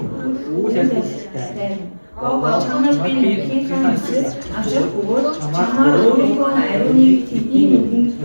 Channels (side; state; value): both; inverted; correlation -1.00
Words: Гого чамд би нэгний ханаас авчрах бөгөөд чамаар өөрийнхөө ариуныг тэдний нүдэнд